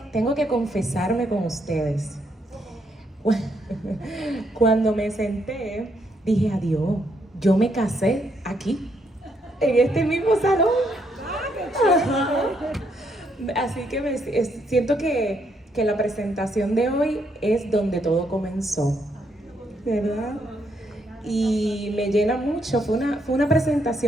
confesarme con ustedes. Cuando me senté, dije, adiós, yo me casé aquí, en este mismo salón. Ajá. Así que siento que la presentación de hoy es donde todo comenzó, ¿verdad? Y me llena mucho, fue una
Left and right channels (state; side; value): normal; both; correlation 0.75